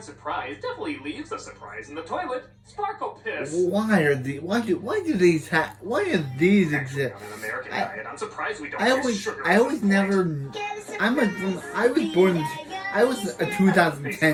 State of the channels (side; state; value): both; identical; correlation 1.00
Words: Surprise definitely leaves a surprise in the toilet. Sparkle Piss. Why are these? Why do these why do these exist? On an American I- diet, I'm surprised we don't I get always sugar I at always some point. never. I was a